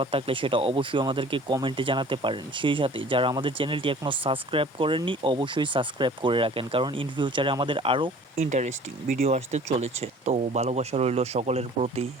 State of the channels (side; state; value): both; normal; correlation 0.48